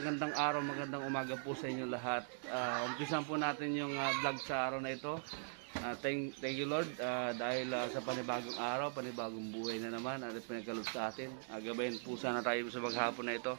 araw, magandang umaga po sa inyo lahat. Umpisan po natin yung vlog sa araw na ito. Thank you Lord dahil sa panibagong araw, panibagong buhay na naman at pinagkaloob sa atin. Gabayan po sana tayo sa maghapon na ito.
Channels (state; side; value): silent; left; digital silence